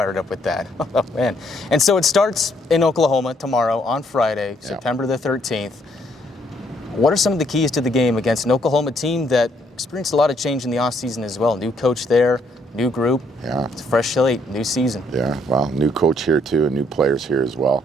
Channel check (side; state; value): both; normal; correlation 0.69